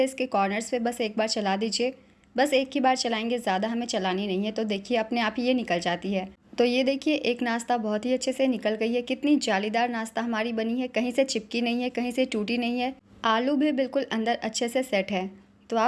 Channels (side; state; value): both; identical; correlation 1.00